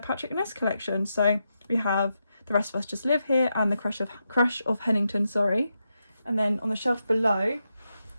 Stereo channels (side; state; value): both; inverted; correlation -0.86